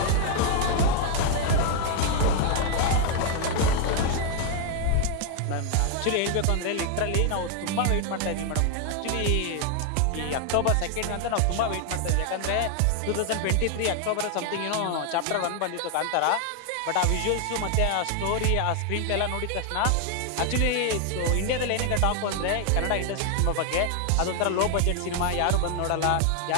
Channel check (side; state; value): both; different; correlation 0.00